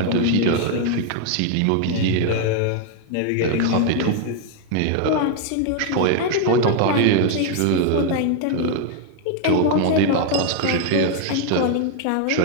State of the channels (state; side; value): different; both; correlation 0.00